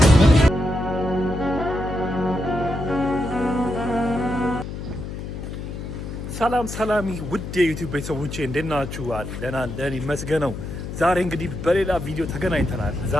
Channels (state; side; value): noise; left; hum, 8 dB below the sound